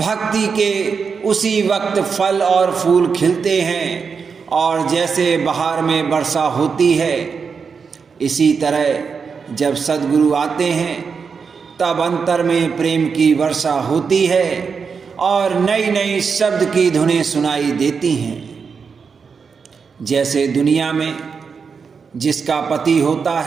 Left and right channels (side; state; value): left; quieter; 5.7 dB